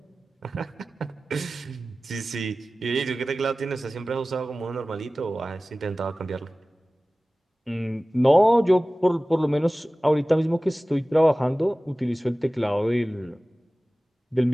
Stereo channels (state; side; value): normal; both; correlation 0.97